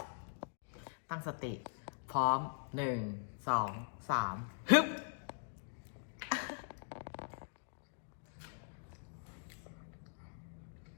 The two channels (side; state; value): right; silent; digital silence